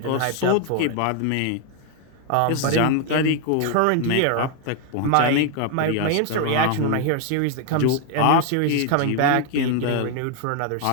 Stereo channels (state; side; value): different; both; correlation 0.00